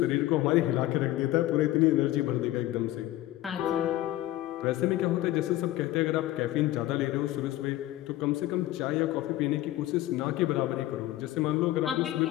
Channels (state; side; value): quieter; right; 15.5 dB